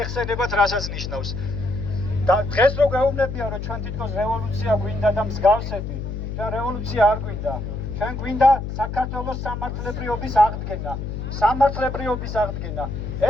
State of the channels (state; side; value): noise; left; hum, 5 dB below the sound